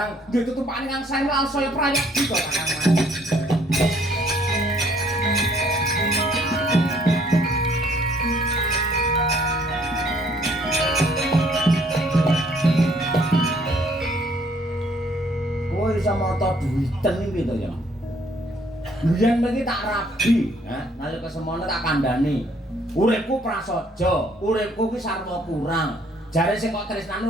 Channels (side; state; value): both; normal; correlation 0.63